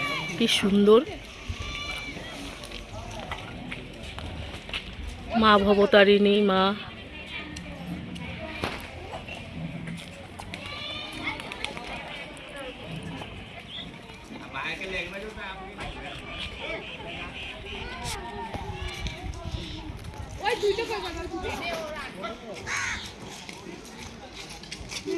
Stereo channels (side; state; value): both; identical; correlation 1.00